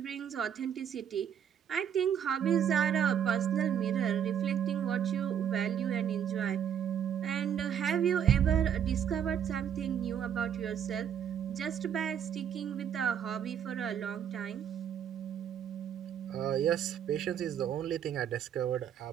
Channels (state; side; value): quieter; left; 8.8 dB